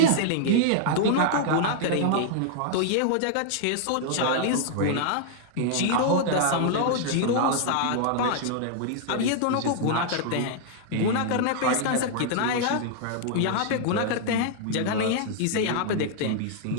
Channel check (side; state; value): both; different; correlation -0.01